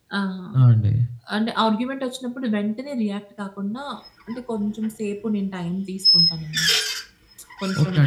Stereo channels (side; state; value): both; identical; correlation 1.00